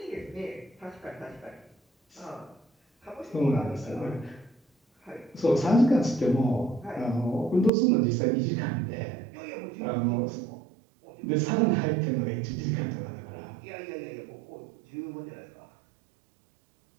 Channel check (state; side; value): drops out; left; at 7.7 s